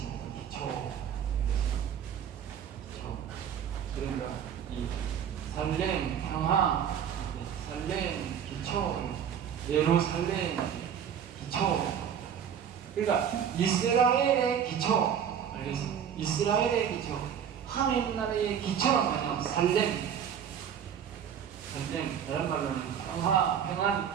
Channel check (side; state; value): left; quieter; 8.5 dB